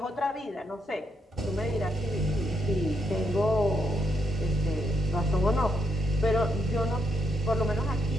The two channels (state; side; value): normal; both; correlation 0.79